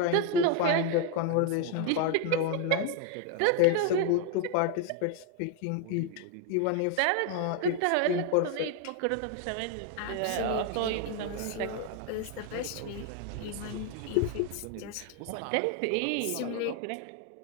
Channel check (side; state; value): both; different; correlation 0.01